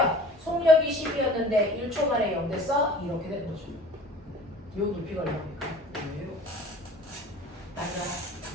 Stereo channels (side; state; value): both; normal; correlation 0.45